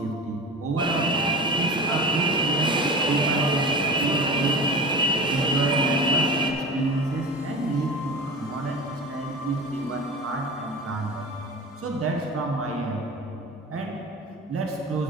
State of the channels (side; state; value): both; normal; correlation 0.32